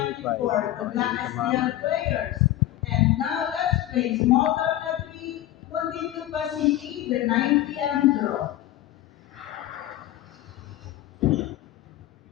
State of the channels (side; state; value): right; quieter; 14.0 dB